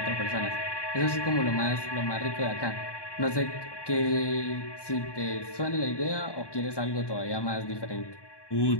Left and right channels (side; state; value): right; late; 1.2 ms